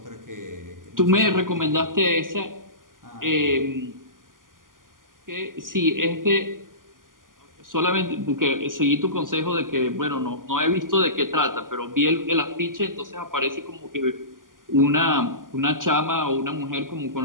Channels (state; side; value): late; left; 0.90 ms